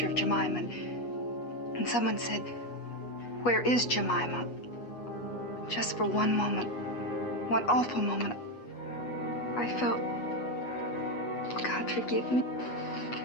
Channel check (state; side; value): late; right; 8.3 ms